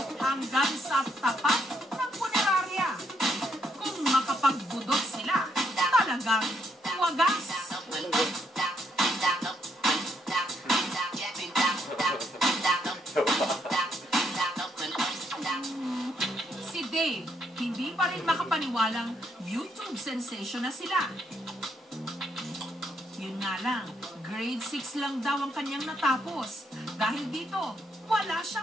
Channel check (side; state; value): both; normal; correlation 0.74